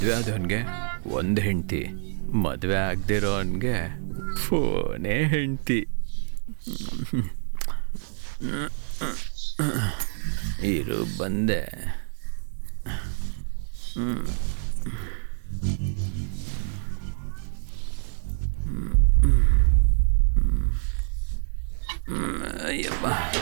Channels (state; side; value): silent; left; 61 dB below the other